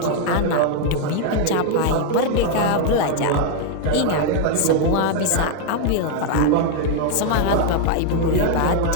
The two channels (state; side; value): different; both; correlation 0.01